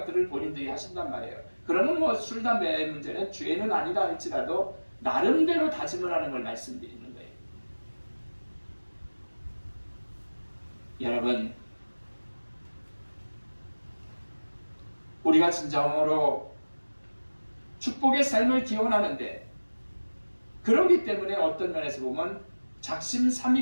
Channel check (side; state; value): both; inverted; correlation -1.00